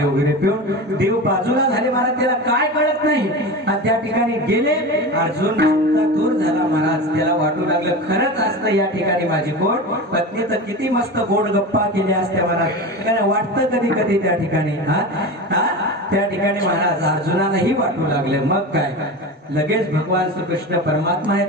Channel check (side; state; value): both; normal; correlation 0.27